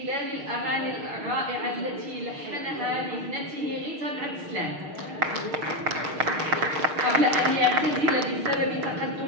الأغاني الرائعة التي لحنها لابنته غيتا بن عبد السلام قبل أن يعتزل بسبب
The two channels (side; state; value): left; late; 6.5 ms